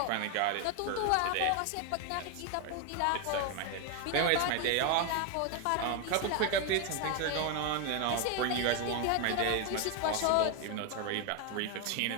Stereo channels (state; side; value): different; both; correlation 0.01